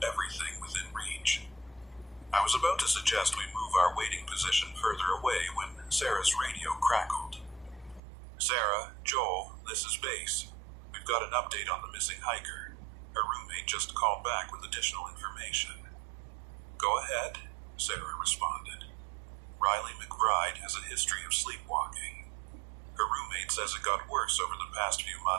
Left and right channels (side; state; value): left; drops out; at 8.0 s